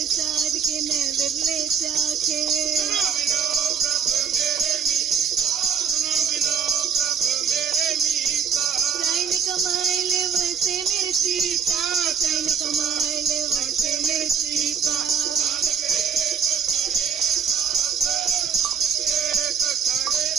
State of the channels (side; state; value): left; quieter; 6.9 dB